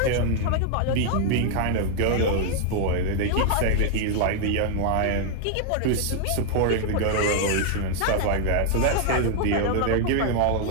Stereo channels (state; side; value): different; both; correlation 0.00